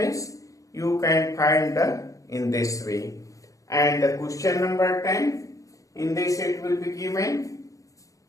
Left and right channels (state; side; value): late; right; 0.16 ms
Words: you can find in this way. And the question number 10, in this it will be given.